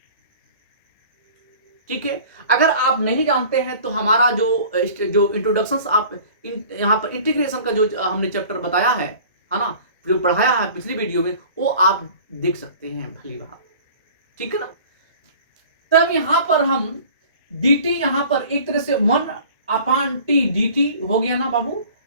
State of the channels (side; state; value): both; inverted; correlation -0.46